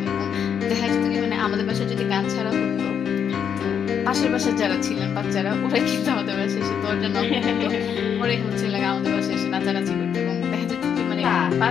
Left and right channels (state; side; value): quieter; right; 7.9 dB